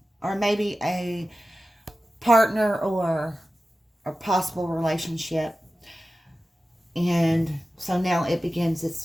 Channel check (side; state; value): both; normal; correlation 0.94